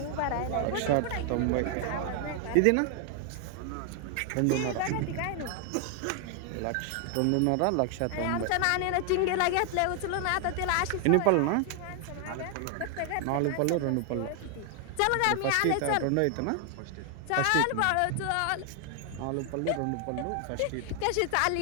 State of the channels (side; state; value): both; different; correlation 0.00